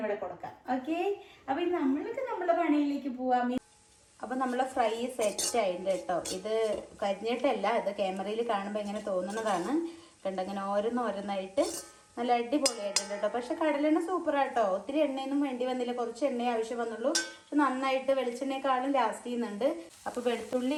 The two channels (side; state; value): both; identical; correlation 1.00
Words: കൊടുക്കാം. ഓക്കെ, അപ്പൊ നമ്മൾക്ക് നമ്മളെ പണിയിലേക്ക് പോവാം. അപ്പൊ നമ്മളെ ഫ്രൈ സെറ്റ് ആയിട്ടുണ്ട് കേട്ടോ. ഇത് കരിഞ്ഞിട്ടല്ല, ഇത് ക്യാമറയിൽ കാണുമ്പോൾ ഇങ്ങനെ തോന്നുന്നതാണ്. കണ്ടങ്ങനെ ഓരോന്നായിട്ട് നല്ല അടിപൊളിയായിട്ടുണ്ട് കേട്ടോ. പക്ഷെ കടലെണ്ണ സൂപ്പറാട്ടോ. ഒത്തിരി എണ്ണയൊന്നും വേണ്ടി വന്നില്ല. കുറച്ച് എണ്ണയെ ആവശ്യം വന്നുള്ളൂ. പക്ഷെ നന്നായിട്ട് വെളിച്ചെണ്ണയെക്കാളും ലാസ്റ്റ് ചെയ്യുന്നുണ്ട്. അപ്പൊ